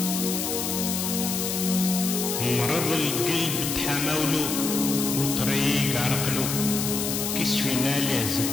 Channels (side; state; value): left; noise; hiss, 2 dB below the sound